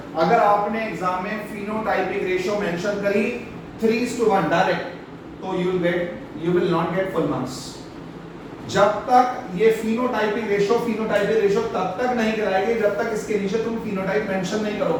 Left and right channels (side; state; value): both; identical; correlation 1.00